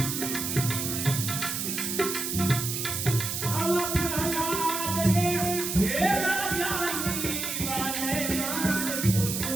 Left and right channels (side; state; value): right; noise; hiss, 3 dB below the sound